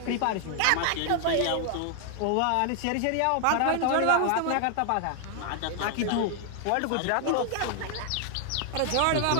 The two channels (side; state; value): both; different; correlation 0.00